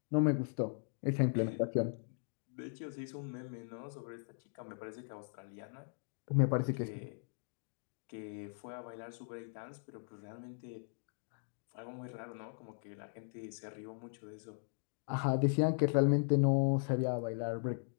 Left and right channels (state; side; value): silent; right; digital silence